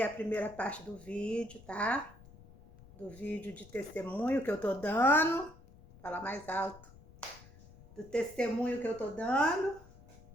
a primeira parte do vídeo, tá? Do vídeo de testemunho que eu tô dando. Fala mais alto. Do testemunho que eu tô dando.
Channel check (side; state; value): left; noise; rumble, 21 dB below the sound